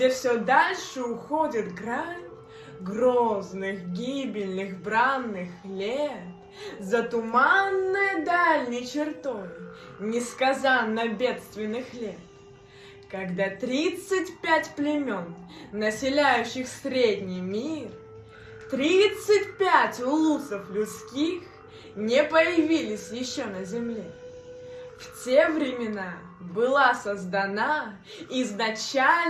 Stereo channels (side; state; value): both; identical; correlation 1.00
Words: все дальше уходит грань грозных, гибельных, бранных лет, за туманной дальней чертой несказанно бедственных лет, когда 35 племен, населяющих средний мир, 35 улусов людских не появились еще на земле. В те времена была создана